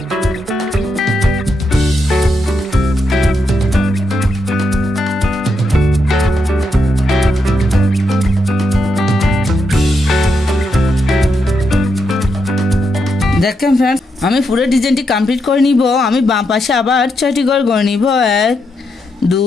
দেখেন ফ্রেন্ডস, আমি পুরো ডিজাইনটি কমপ্লিট করে নিব। আমি বাম পাশে আবার 6টি গড় গড়ে নিব। 1 2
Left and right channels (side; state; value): both; normal; correlation 0.82